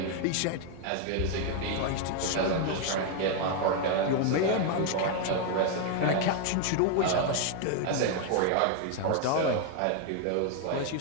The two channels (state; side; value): different; both; correlation 0.00